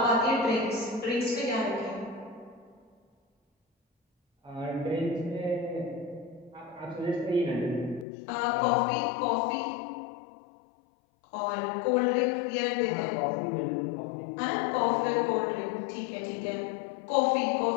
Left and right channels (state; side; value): drops out; right; at 8.1 s